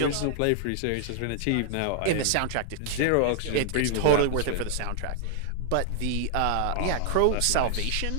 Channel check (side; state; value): both; different; correlation 0.00